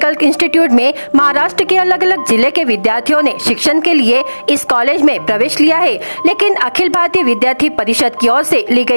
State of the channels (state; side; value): inverted; both; correlation -1.00